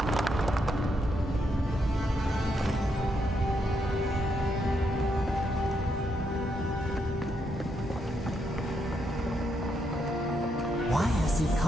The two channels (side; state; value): both; normal; correlation 0.78